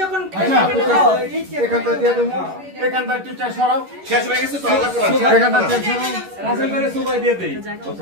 যখন এখানটা দিয়ে দেবো এখানটা টিচার সরাও শেষ হয়ে গেছে তো আল্লাহ করে এখানটা টিচার সরাও রাসেল করে সুবাই দিয়ে দেই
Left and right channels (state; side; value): late; left; 11 ms